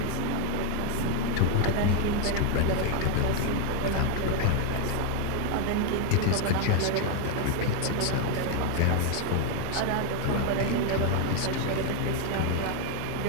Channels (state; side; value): different; both; correlation 0.01